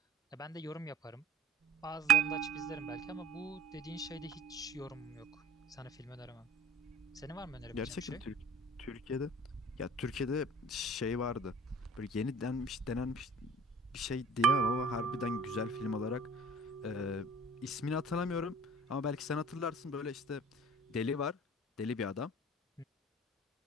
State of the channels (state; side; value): normal; both; correlation 0.46